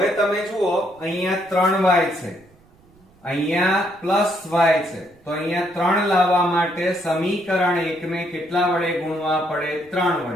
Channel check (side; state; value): right; noise; rumble, 30 dB below the sound